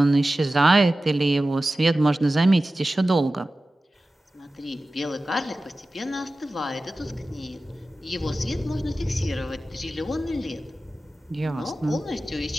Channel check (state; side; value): normal; both; correlation 0.95